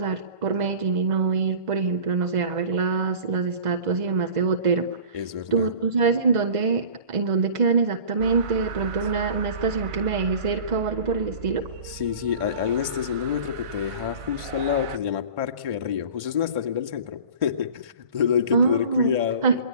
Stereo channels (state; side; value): late; left; 1.5 ms